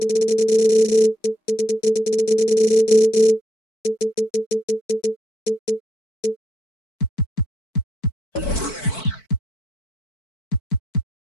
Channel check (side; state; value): right; late; 4.5 ms